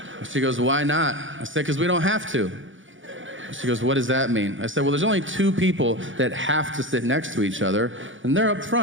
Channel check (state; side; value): late; left; 0.56 ms